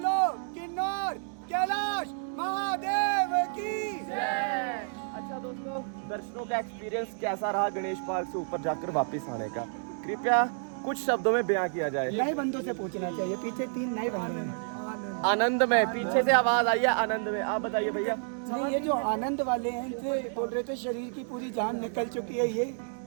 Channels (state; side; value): silent; left; digital silence